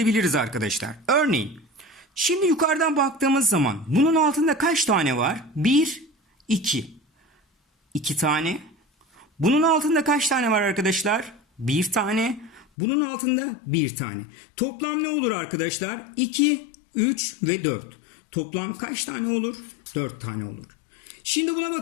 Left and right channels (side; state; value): right; drops out; at 12.7 s